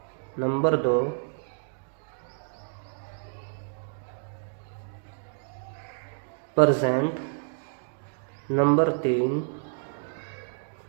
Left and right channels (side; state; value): left; silent; digital silence